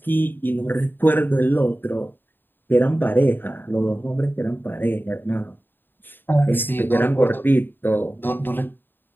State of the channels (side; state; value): right; late; 0.095 ms